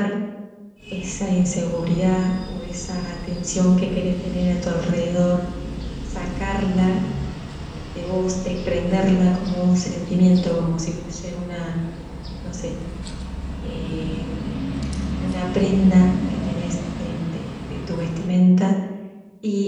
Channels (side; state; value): both; identical; correlation 1.00